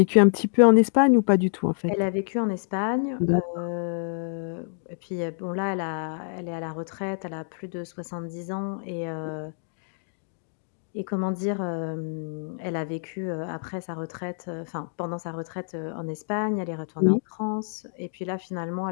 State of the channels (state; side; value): silent; right; digital silence